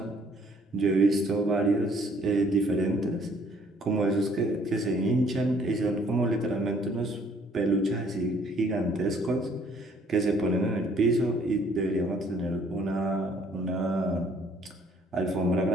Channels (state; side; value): normal; both; correlation 0.61